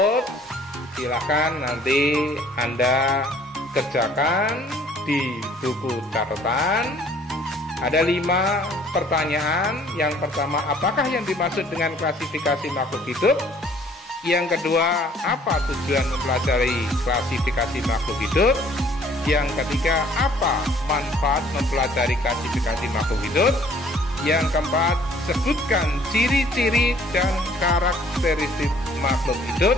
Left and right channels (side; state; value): both; normal; correlation 0.57